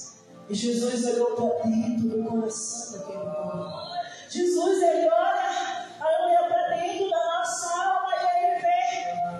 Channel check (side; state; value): both; identical; correlation 1.00